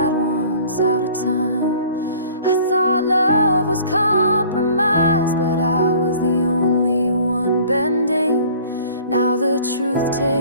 once out of time. I thought love was compromise, but I was the only one bending. Now the truth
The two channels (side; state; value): both; inverted; correlation -0.49